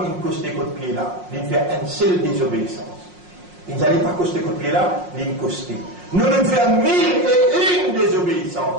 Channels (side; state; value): left; late; 5.6 ms